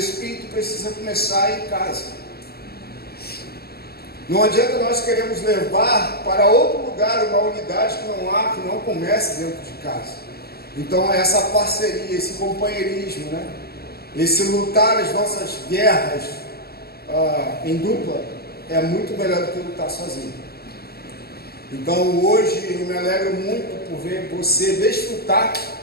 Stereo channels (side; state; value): right; late; 0.46 ms